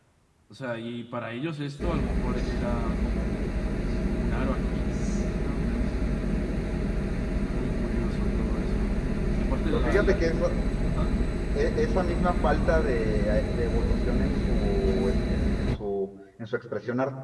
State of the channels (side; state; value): both; identical; correlation 1.00